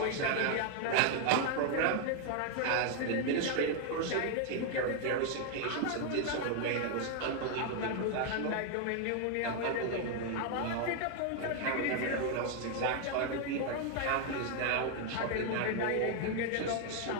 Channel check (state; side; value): different; both; correlation 0.00